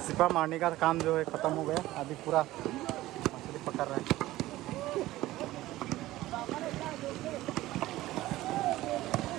सिपा मारने का काम जो है ख़त्म हो गया। अभी पूरा मछली पकड़ रहा है।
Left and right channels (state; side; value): quieter; left; 16.6 dB